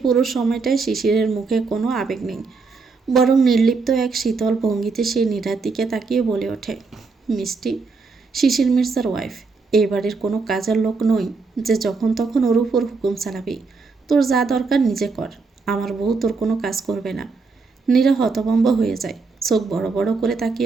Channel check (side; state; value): left; quieter; 4.4 dB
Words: পুরো সময়টায় শিশিরের মুখে কোনো আবেগ নেই, বরং নির্লিপ্ত এক শীতল ভঙ্গিতে সে নীরার দিকে তাকিয়ে বলে ওঠে, মিষ্টি, শিশির মির্জার ওয়াইফ, এই বাড়ির কোনো কাজের লোক নই যে যখন তখন ওর উপর হুকুম চালাবি। তোর যা দরকার নিজে কর, আমার বউ তোর কোনো কাজ করবে না। নীরা হতভম্ব হয়ে যায়, চোখ বড় বড় করে